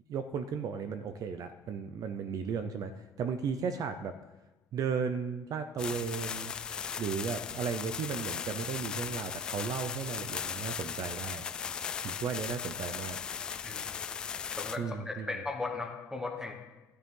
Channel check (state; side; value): normal; both; correlation 0.38